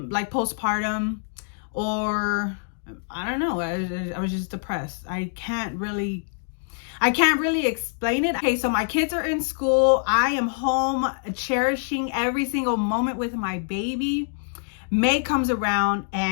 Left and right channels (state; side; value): silent; right; digital silence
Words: postpartum, or I don't know. I was just depressed. I can't really explain it. Okay, so my kids are in school. I am home cherishing every single moment with my baby. May comes around